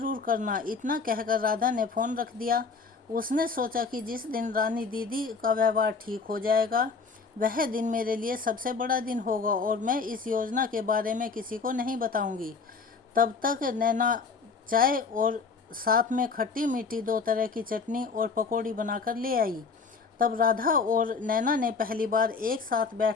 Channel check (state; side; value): quieter; right; 4.8 dB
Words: करना। इतना कहकर राधा ने फ़ोन रख दिया। उसने सोचा कि जिस दिन रानी दीदी का व्यवहार ठीक हो जाएगा, वह दिन मेरे लिए सबसे बड़ा दिन होगा और मैं इस योजना के बारे में किसी को नहीं बताऊंगी। तब तक नैना चाय और साथ में खट्टी मीठी 2 तरह की चटनी और पकौड़ी बनाकर ले आई। तब राधा और नैना ने पहली बार एक साथ